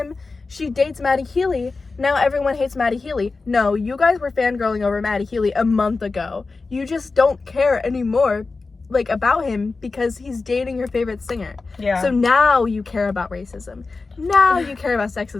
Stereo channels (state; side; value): quieter; right; 3.9 dB